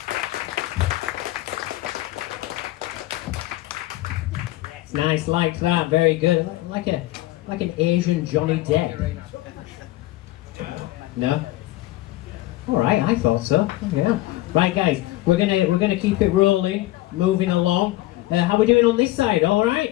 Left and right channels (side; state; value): right; quieter; 17.3 dB